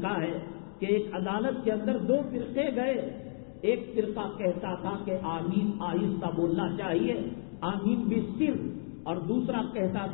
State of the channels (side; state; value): right; silent; 57 dB below the other